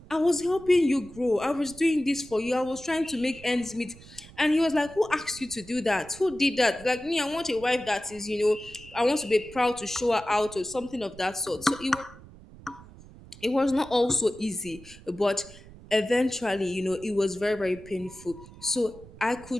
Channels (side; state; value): right; noise; rumble, 20 dB below the sound